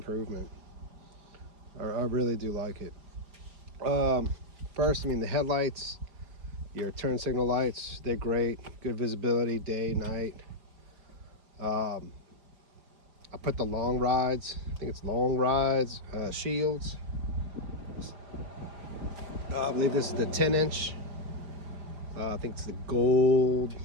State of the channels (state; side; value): late; left; 4.9 ms